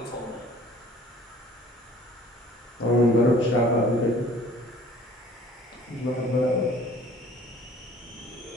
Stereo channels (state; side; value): normal; both; correlation 0.52